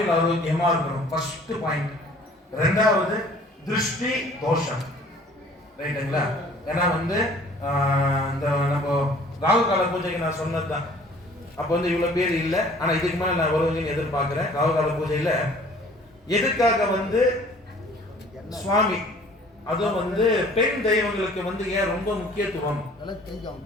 ஆரோக்கியமா இருக்கணும். First point. ரெண்டாவது திருஷ்டி தோஷம் ரைட்டுங்களா. ஏன்னா வந்து இந்த நம்ம ராகு கால பூஜைக்கு நான் சொன்னதுதான். அப்போ வந்து இவ்வளவு பேர் இல்லை, ஆனா இதுக்கு மேல நான் வருவீங்கன்னு எதிர்பார்க்கிறேன். ராகு கால பூஜையில எதுக்காக வந்து சுவாமி அதுவும் வந்து பெண் தெய்வங்களுக்கு வந்து ஏன் ரொம்ப முக்கியத்துவம்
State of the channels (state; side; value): normal; both; correlation 0.52